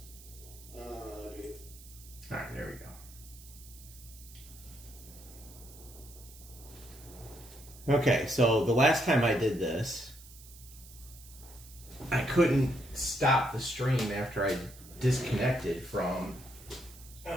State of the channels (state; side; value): noise; right; hiss, 19 dB below the sound